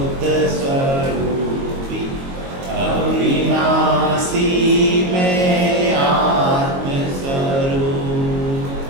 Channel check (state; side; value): late; left; 22 ms